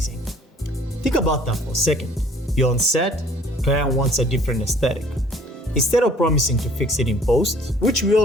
Think about that for a second. You're on set, client wants a different aesthetic. Instead of promising to fix it in post, which we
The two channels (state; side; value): normal; both; correlation 0.54